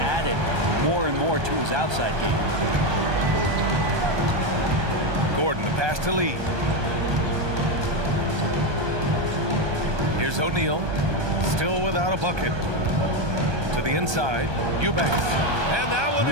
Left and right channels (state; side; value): late; left; 1.2 ms